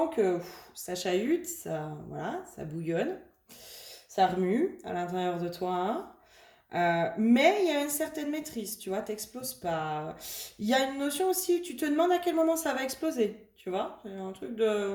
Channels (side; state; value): both; identical; correlation 1.00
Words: que ça chahute, voilà, ça bouillonne, ça remue à l'intérieur de toi. Mais il y a une certaine maîtrise, tu vois, t'exploses pas. Il y a une notion aussi, tu te demandes à quel moment ça va exploser, tu vois. C'est un truc